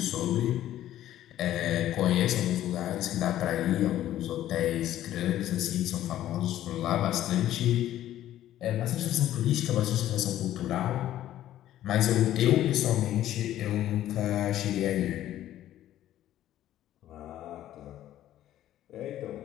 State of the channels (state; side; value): quieter; right; 12.8 dB